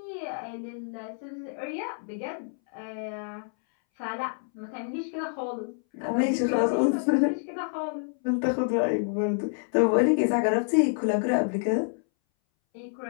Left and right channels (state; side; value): silent; right; 59 dB below the other